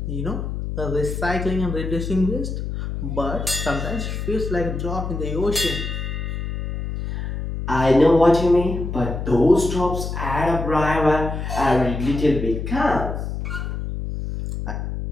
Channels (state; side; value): noise; left; hum, 4 dB below the sound